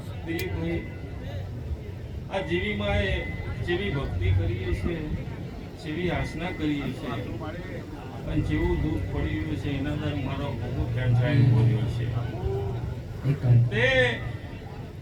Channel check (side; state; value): both; identical; correlation 1.00